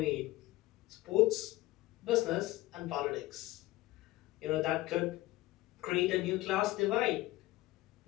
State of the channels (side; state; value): right; quieter; 17.9 dB